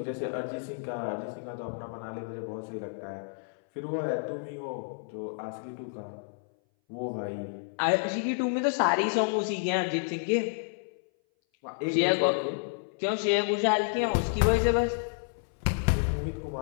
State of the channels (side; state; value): right; silent; 58 dB below the other